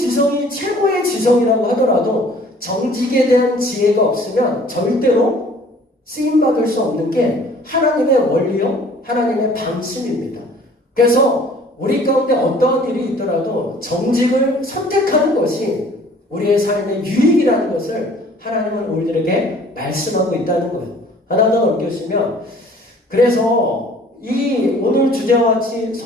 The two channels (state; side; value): normal; both; correlation 0.53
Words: 최고의 지성이라고 하더라도 정직에 대한 지혜가 없으면 절대로 쓰임받을 수 없는 게 하나님의 원리요 하나님의 방침입니다. 그래서 우리 가운데 어떠한 일이 있더라도 정직을 선택하는 것이 우리의 삶의 유익이라는 것을 하나님은 우리들에게 말씀하고 있다는 거예요. 하나 더 넘겨주시면 그래서 이 오늘 주제와 같이